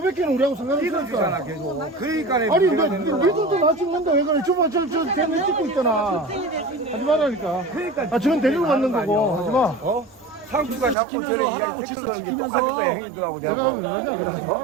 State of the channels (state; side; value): drops out; left; at 11.0 s